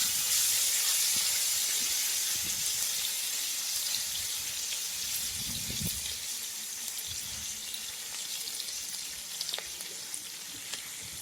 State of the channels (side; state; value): both; normal; correlation 0.96